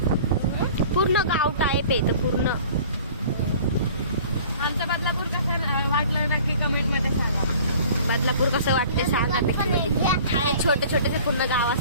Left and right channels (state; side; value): inverted; both; correlation -0.47